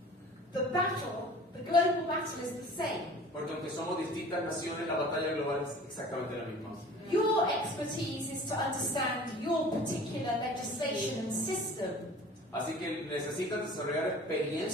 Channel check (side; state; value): both; normal; correlation 0.44